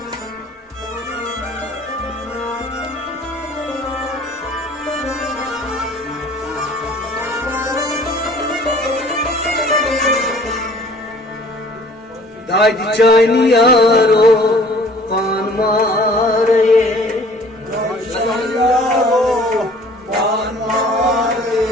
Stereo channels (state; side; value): normal; both; correlation 0.52